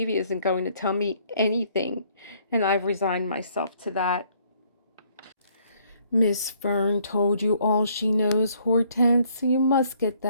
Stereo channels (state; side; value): inverted; both; correlation -0.65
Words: isn't going to tell me anything, and I've resigned myself to that." "Miss Fern told you all she knows, Hortense. You must get